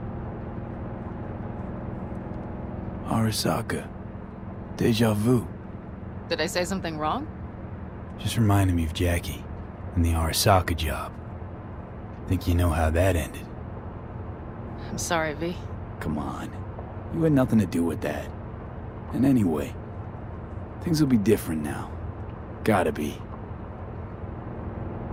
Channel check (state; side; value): identical; both; correlation 1.00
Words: Arasaka. Deja vu. Did I say something wrong? Just reminded me of Jackie and the Arasaka job. Think you know how that ended? I'm sorry, V. Come on. You had nothing to do with that. And anyway, things will be different now. Gotta be.